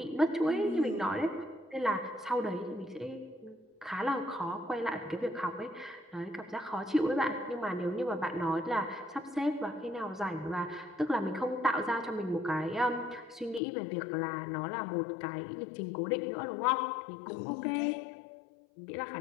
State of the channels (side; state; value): right; drops out; at 13.6 s